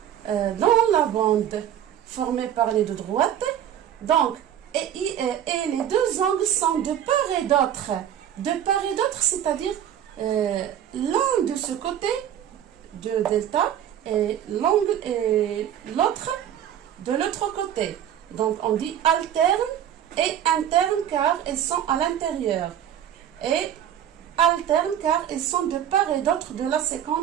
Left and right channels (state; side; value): quieter; left; 10.2 dB